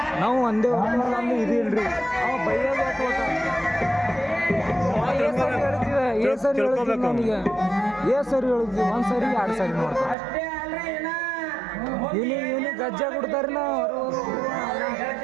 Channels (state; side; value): drops out; left; at 10.2 s